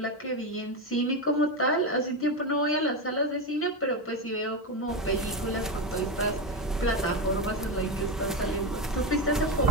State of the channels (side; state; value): both; normal; correlation 0.14